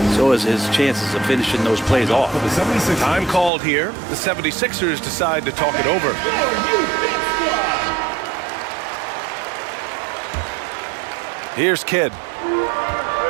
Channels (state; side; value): drops out; left; at 3.5 s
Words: so is his chances of finishing those plays off. Time called here. The 76ers decide to talk it over. Here's Kidd.